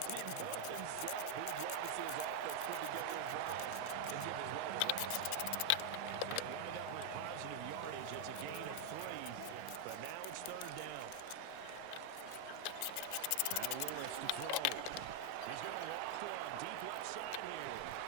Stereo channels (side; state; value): both; different; correlation 0.00